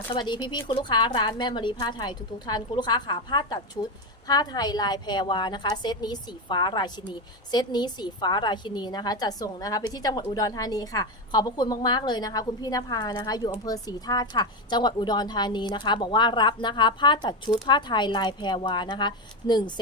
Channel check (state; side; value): normal; both; correlation 0.13